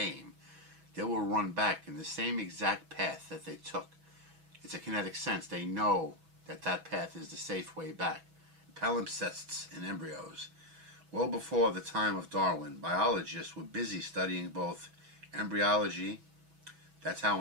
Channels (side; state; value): left; late; 6.1 ms